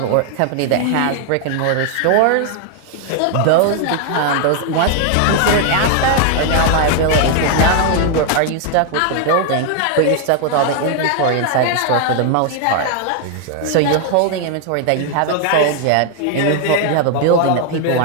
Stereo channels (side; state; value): both; different; correlation 0.00